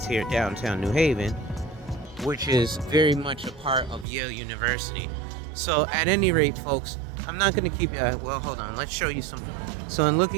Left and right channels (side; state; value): left; drops out; at 4.0 s